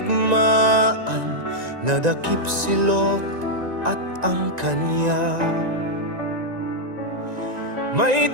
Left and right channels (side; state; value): left; late; 1.9 ms